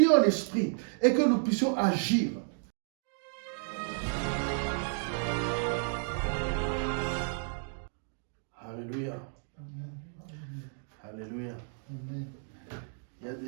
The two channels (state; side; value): silent; left; 56 dB below the other